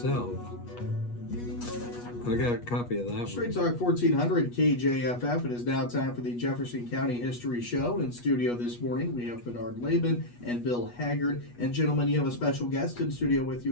I got a copy of that Straight one. Talk 1400 KJFF. It is now time for the Jefferson County History Show. In studio this morning, we have Bernard Laban and Bill Haggard. And gentlemen, you have a special guest in studio with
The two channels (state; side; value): late; right; 8.3 ms